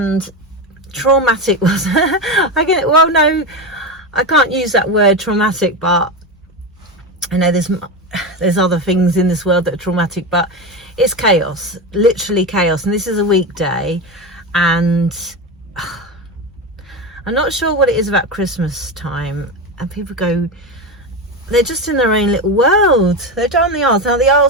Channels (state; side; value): normal; both; correlation 0.18